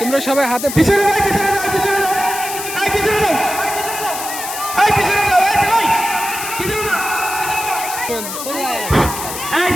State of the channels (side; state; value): left; noise; hiss, 7 dB below the sound